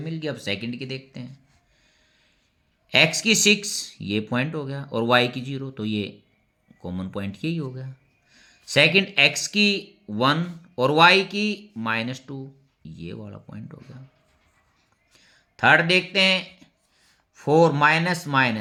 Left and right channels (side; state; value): both; identical; correlation 1.00